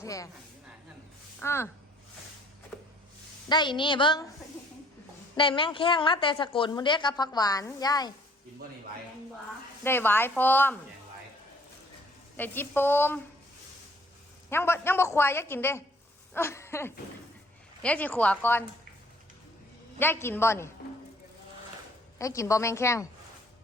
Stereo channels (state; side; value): normal; both; correlation 0.59